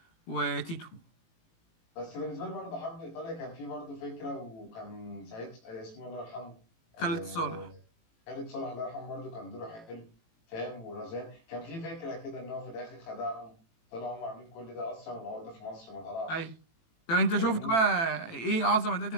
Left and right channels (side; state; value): right; late; 18 ms